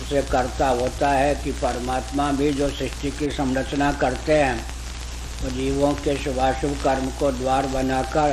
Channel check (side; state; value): both; identical; correlation 1.00